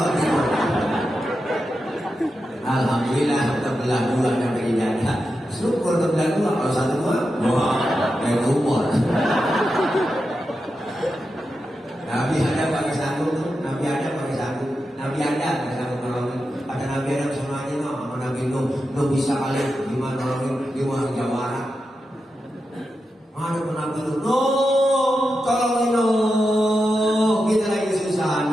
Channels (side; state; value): both; normal; correlation 0.89